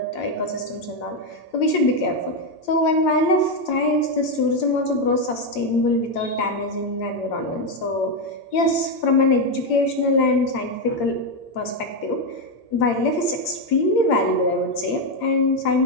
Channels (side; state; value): right; late; 8.7 ms